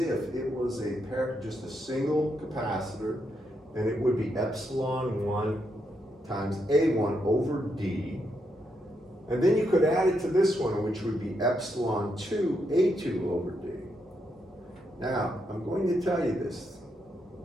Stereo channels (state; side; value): normal; both; correlation 0.80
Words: it was just a single capacitor, and it would be epsilon 1 times A1 over D. And then you could add it to this one, which would be epsilon 2 A2 over D. Now, I'm going to tell you this.